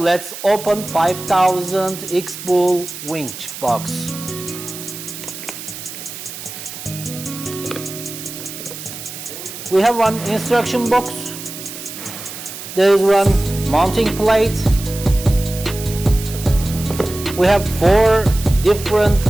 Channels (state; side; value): noise; right; hiss, 11 dB below the sound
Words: open 5000 X-BULL winch box. We have one instruction box. There is one mounting plate. We have 4 different